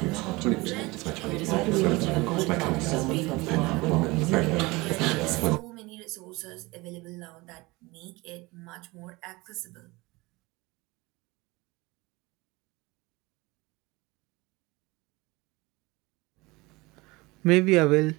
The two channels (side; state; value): left; quieter; 23.1 dB